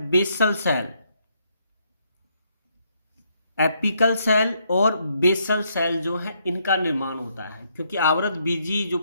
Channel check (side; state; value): both; inverted; correlation -0.74